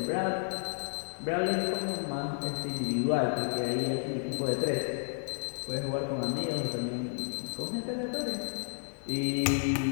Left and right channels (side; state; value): right; silent; digital silence